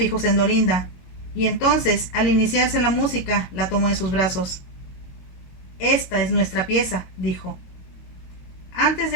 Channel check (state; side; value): late; right; 22 ms